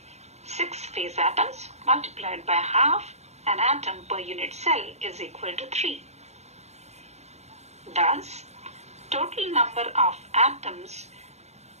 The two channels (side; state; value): left; late; 0.32 ms